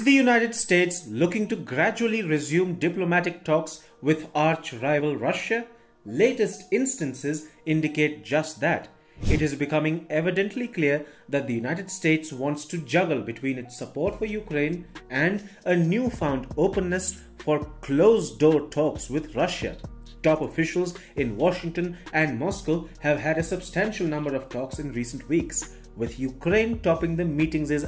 the United States looking to gradually resume diplomatic talks with arch-rival Russia? Latest instances indicate just that. It is becoming evidently clear that the United States wants to juggle between its support for Ukraine and a newfound openness for closed-door talks with Russia. Top officials in Washington and Moscow have had a substantial number of talks in recent weeks, with Ukraine topping the meeting's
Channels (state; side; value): identical; both; correlation 1.00